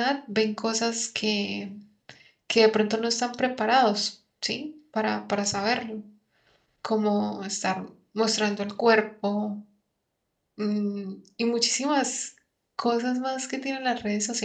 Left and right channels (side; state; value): both; identical; correlation 1.00